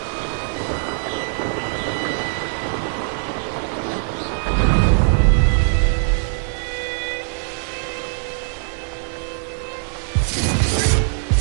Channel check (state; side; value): silent; left; digital silence